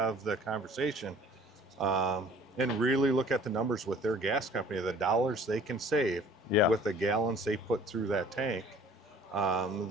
the conversation and really look at the numbers with their gas company, the dollars they can save with the gallons they put through that tank,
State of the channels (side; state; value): both; normal; correlation 0.51